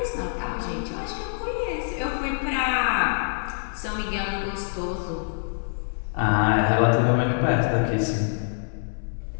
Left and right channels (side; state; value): right; silent; 59 dB below the other